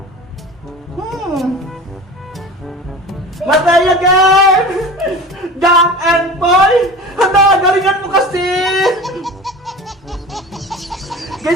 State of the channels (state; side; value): normal; both; correlation 0.35